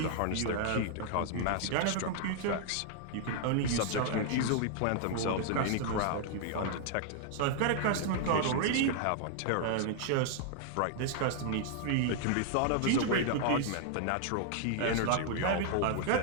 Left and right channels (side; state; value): both; different; correlation 0.00